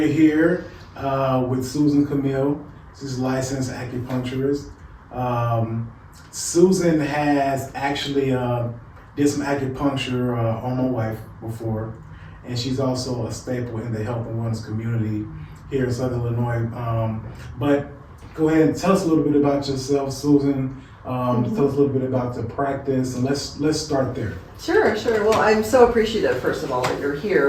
here with Susan Kamil. She's a licensed acupuncturist. Susan has actually did some acupuncture on my wife before. And she's also a staple in the health and wellness community here in Southern Illinois. But go ahead and tell us a little bit about yourself, Susan. Tell us a little bit about the practice, and let's start there. Sure. Well, I'm so appreciative, first of all, that you're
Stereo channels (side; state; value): both; identical; correlation 1.00